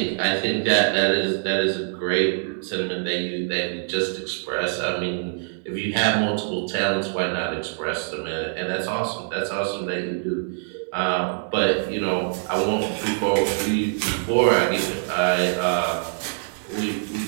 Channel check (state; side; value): silent; left; digital silence